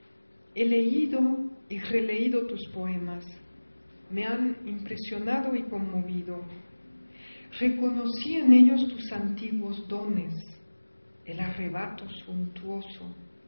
he leído y releído tus poemas, me han impresionado y conmovido. Reconocí en ellos tus antiguos dones, el arrebato suntuoso,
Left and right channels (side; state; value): both; inverted; correlation -1.00